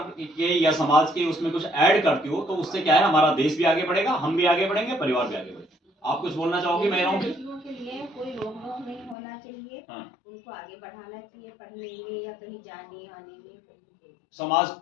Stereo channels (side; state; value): right; drops out; at 9.2 s